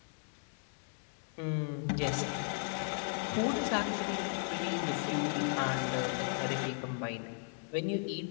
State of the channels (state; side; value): silent; right; 54 dB below the other